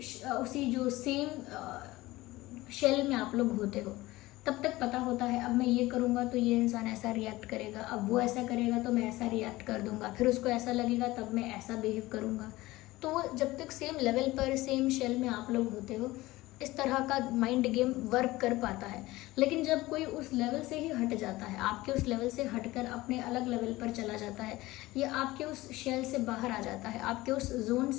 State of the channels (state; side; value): quieter; right; 18.8 dB